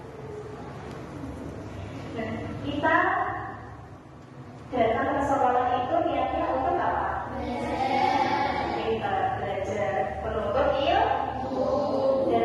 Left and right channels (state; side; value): identical; both; correlation 1.00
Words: Nah, kita datang ke sekolah itu niatnya untuk apa? Kita belajar menuntut ilmu